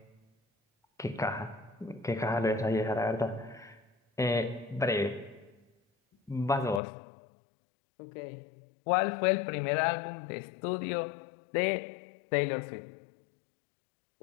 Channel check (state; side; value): drops out; right; at 6.8 s